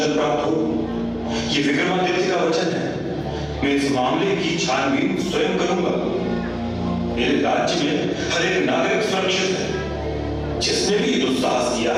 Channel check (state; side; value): identical; both; correlation 1.00